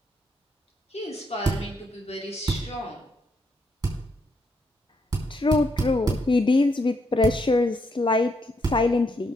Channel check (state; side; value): normal; both; correlation 0.76